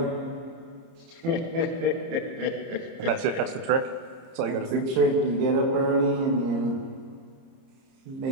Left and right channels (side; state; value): left; late; 30 ms